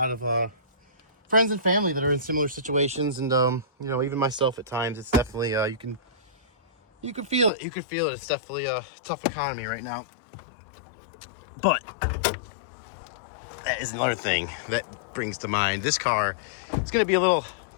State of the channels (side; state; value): right; drops out; at 7.5 s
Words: of friends and family that are in similar situations, and you know, even myself at times. It's definitely you can feel it. It's definitely a tough economy right now. But that is another thing that brings to mind this car. It's going to be a little